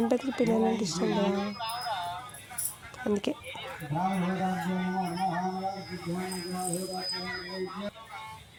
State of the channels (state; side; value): identical; both; correlation 1.00